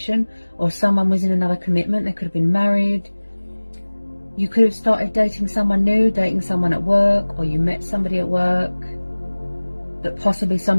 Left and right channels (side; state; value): both; inverted; correlation -1.00